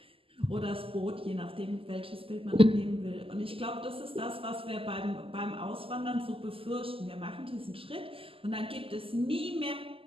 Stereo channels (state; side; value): late; left; 0.26 ms